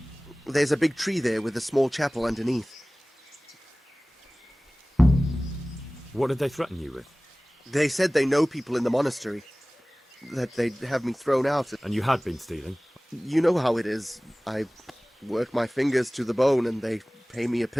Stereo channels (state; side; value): normal; both; correlation 0.98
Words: There's a big tree there with a small chapel underneath. What did they threaten you with? They said they know people in the monastery. That they'd have me thrown out. And you had been stealing? You know how it is. I work my fingers to the bone and they pay me a...